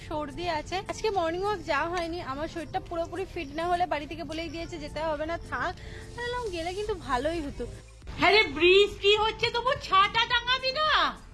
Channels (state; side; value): identical; both; correlation 1.00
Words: সর্দি আছে। আজকে মর্নিং ওয়াক যাওয়া হয়নি, আমার শরীরটা পুরোপুরি ফিট না হলে বাড়ি থেকে বলেই দিয়েছে যেতে হবে না, থাক। গেলে কিন্তু ভালোই হতো। হ্যাঁ রে, বৃষ্টি হচ্ছে, তবু ছাতা টাঙাবি না?